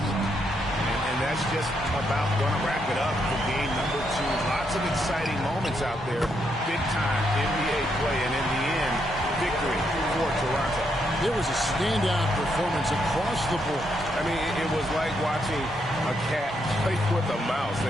And that's just about going to wrap it up for game number 2. Lots of exciting moments out there. Big time NBA play. And in the end, victory for Toronto. It was a standout performance across the board. I mean, it was like watching a cat play with a mouse.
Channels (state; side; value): normal; both; correlation 0.78